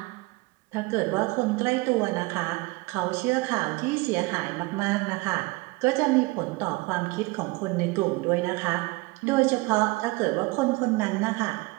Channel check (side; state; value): left; quieter; 23.6 dB